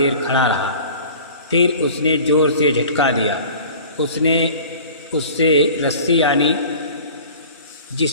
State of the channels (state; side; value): inverted; both; correlation -0.44